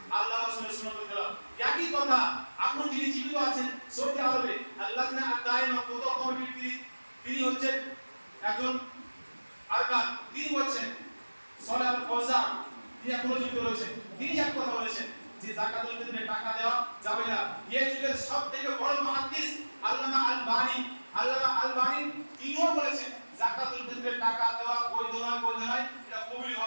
আল্লাহ রাসূলের সুন্নাতের খেলাফ। একই কথা এখন যিনি জীবিত আছেন সৌদি আরবে আল্লাহনা আদায়না ফুতহ কমিটির তিনি হচ্ছেন একজন আরকান, তিনি বলছেন সালাহ আল ফাওজান, তিনি এখনো জীবিত রয়েছেন। তিনি এক কথা বলেছেন যে যাকাতুল ফিতরে টাকা দেওয়া যাবে না। এই যুগের সবথেকে বড় মুহাদ্দিস আল্লামা আল-বানী তিনিও বলেছেন যাকাতুল ফিতরে টাকা দেওয়া বৈধ নয়, বৈধ নয়, এটা কবুল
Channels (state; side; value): inverted; both; correlation -1.00